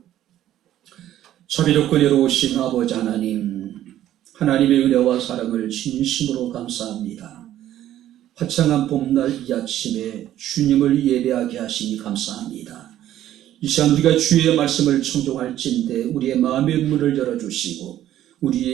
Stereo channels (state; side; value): quieter; left; 12.5 dB